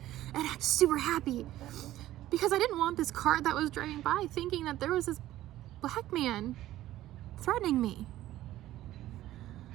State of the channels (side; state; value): left; quieter; 14.5 dB